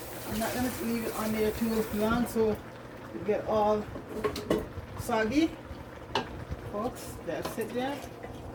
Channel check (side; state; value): both; identical; correlation 1.00